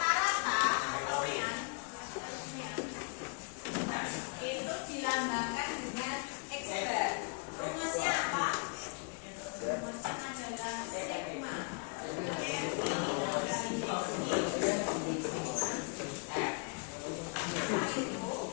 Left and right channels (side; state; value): right; quieter; 37.9 dB